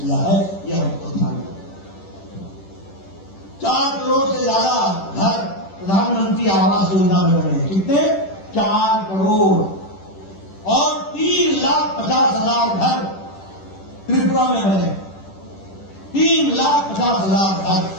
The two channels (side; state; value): right; late; 10 ms